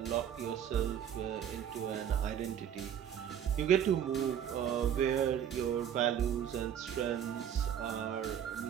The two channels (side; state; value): left; quieter; 9.3 dB